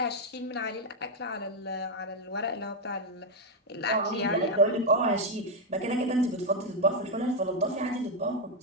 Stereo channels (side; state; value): both; normal; correlation 0.02